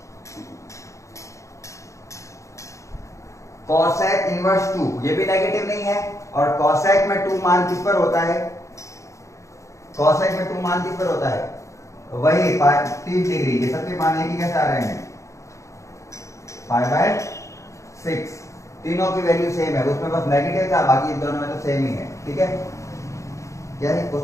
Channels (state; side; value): late; right; 0.15 ms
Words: कॉसेक इनवर्स 2 ये भी नेगेटिव नहीं है, और कॉसेक में 2 मान किस पर होता है, कॉसेक में 2 मान किस पर होता है, वही 30 डिग्री। ये सबके मान एक ही कैसे आ रहे हैं, π/6। तीनों की वैल्यू सेम है, उसमें बस नेगेटिव था, बाकी इन दोनों में तो सेम ही है। ठीक है, क्या है